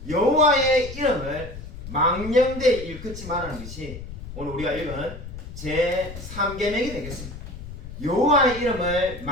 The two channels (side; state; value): left; noise; rumble, 11 dB below the sound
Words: 여호와의 이름을 망령되이 일컫지 말라는 것이 오늘 우리가 읽은 제3계명이 되겠습니다. 여호와의 이름을